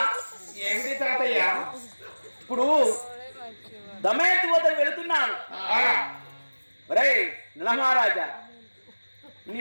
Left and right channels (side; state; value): both; inverted; correlation -1.00